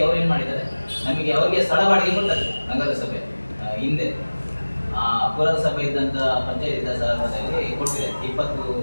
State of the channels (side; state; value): both; inverted; correlation -1.00